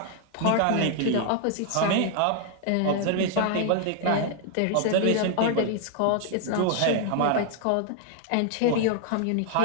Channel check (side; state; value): both; different; correlation 0.00